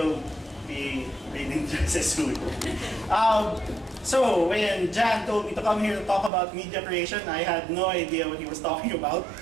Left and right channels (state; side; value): drops out; left; at 6.3 s